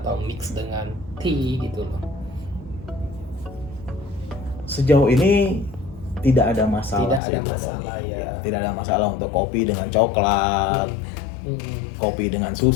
mix dengan tea gitu loh? Sejauh ini tidak ada masalah. Tidak ada sih, masalah, Tony. ya. Tidak ada masalah untuk kopi dengan coklat, kopi dengan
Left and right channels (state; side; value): drops out; right; at 7.2 s